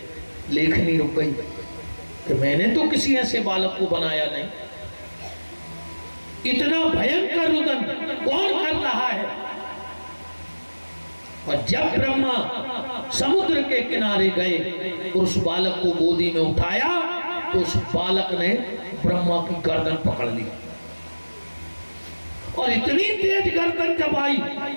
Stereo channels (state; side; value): inverted; both; correlation -1.00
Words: लेखनी रुक गई कि मैंने तो किसी ऐसे बालक को बनाया नहीं। इतना भयंकर रुदन कौन कर रहा है? और जब ब्रह्मा समुद्र के किनारे गए और उस बालक को गोदी में उठाया तो उस बालक ने ब्रह्मा की गर्दन पकड़ ली, और इतनी तेज गर्दन दबाई,